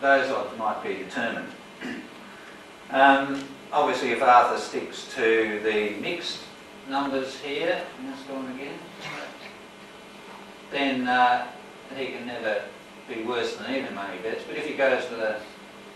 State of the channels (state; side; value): identical; both; correlation 1.00